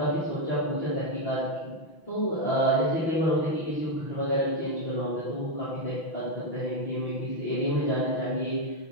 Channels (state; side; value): late; right; 6.1 ms